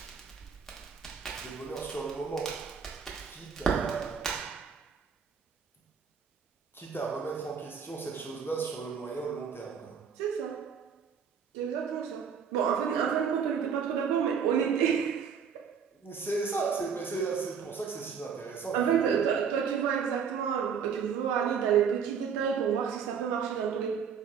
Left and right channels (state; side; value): quieter; left; 6.9 dB